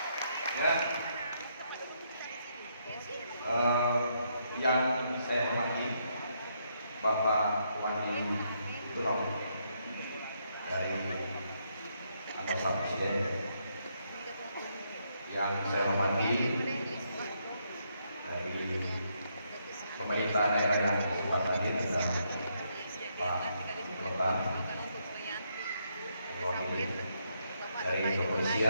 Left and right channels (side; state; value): both; inverted; correlation -0.76